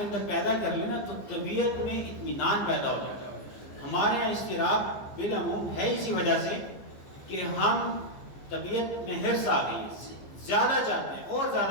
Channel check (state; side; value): late; right; 15 ms